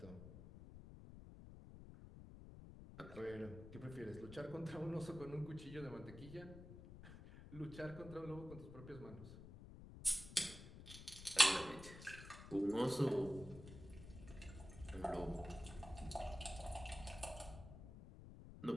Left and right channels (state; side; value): noise; left; rumble, 13 dB below the sound